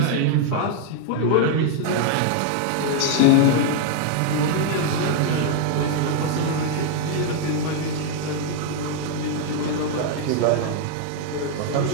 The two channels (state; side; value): different; both; correlation 0.00